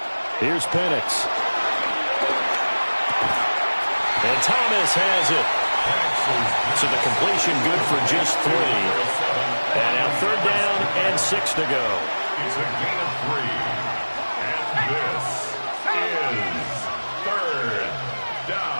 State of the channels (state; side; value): inverted; both; correlation -1.00